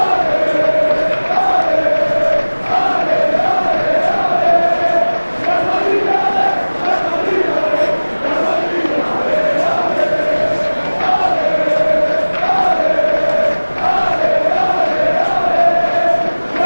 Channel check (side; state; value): both; inverted; correlation -1.00